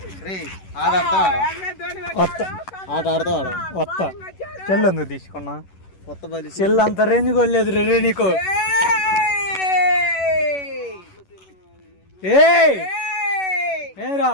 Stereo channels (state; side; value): late; right; 11 ms